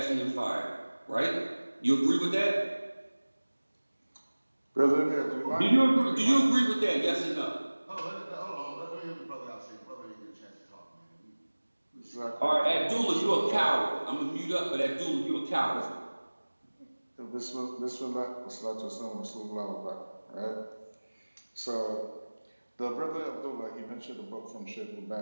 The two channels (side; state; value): both; inverted; correlation -1.00